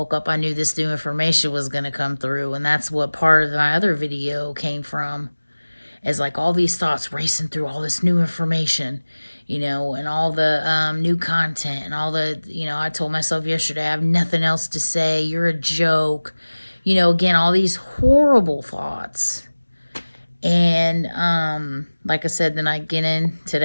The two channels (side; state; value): both; inverted; correlation -1.00